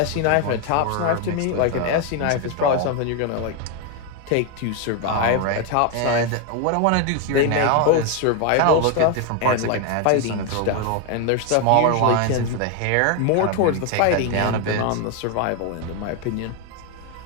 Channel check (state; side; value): different; both; correlation 0.01